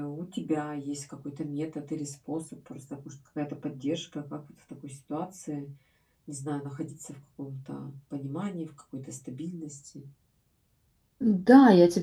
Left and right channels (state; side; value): identical; both; correlation 1.00